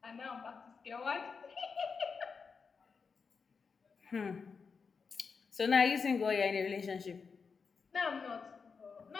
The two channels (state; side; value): quieter; right; 5.3 dB